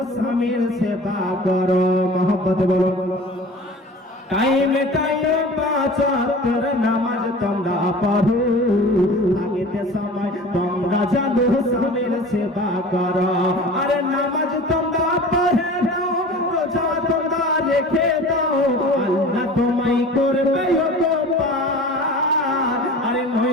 স্বামীর সেবা করো। মহব্বত বলো। টাইমে টাইমে 5 ওয়াক্তের নামাজ তোমরা পড়ো, আগেতে সময় তোমরা জানো স্বামীর সেবা করো। আরে নামাজ তোমরা পড়ে নাও, রোজা তোমরা রেখে দাও, আল্লাহ তোমায় করবে উপকার। আরে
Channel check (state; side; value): normal; both; correlation 0.40